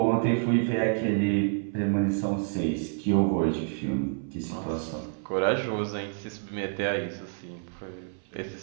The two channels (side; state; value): left; silent; 59 dB below the other